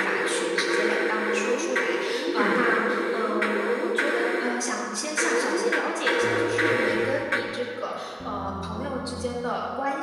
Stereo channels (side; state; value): both; identical; correlation 1.00